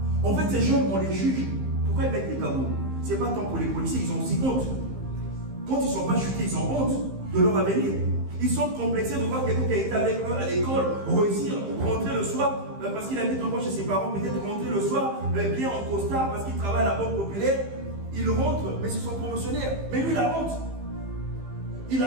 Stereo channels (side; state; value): left; late; 15 ms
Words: En fait, ces gens, on les juge. Pourquoi ils mettent les tabous? Ce n'est pas tant pour les policiers, ils ont aussi honte. Quand ils ne sont pas chutés, ils ont honte de leur avenir. Ils sont complexés de voir quelqu'un qui a été avec eux à l'école, réussir, rentrer le soir, parce qu'il habite encore chez ses parents, peut-être rentrer le soir, bien en costard, parce qu'il travaille à la Banque Populaire. Il rentre, mais c'est son promotionnaire. Mais lui, il a honte. Il